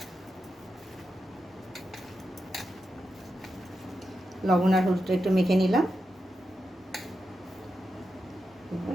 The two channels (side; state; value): both; normal; correlation 0.88